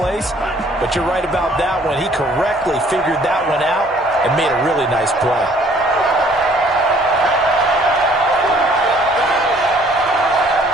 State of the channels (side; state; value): both; normal; correlation 0.59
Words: But you're right about that one. He correctly figured that one out and made a really nice play.